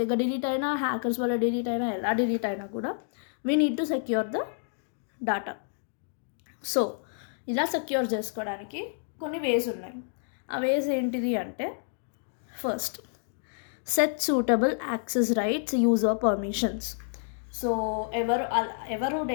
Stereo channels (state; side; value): silent; right; digital silence